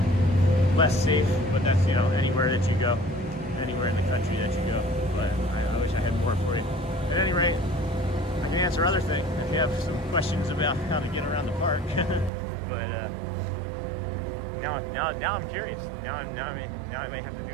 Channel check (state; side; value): drops out; left; at 12.3 s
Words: less safe, but that's, anywhere that you go, anywhere in the country that you go. But I wish I had more for you. At any rate, I can answer other things if you have some questions about how to get around the park. But now I'm curious. Now I may have to